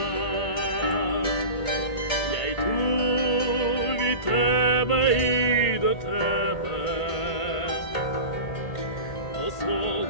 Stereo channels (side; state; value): right; late; 1.8 ms